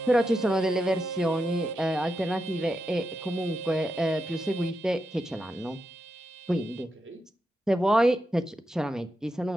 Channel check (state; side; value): normal; both; correlation 0.86